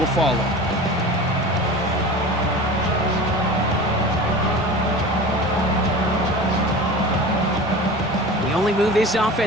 follow. The only move this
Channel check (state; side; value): normal; both; correlation 0.35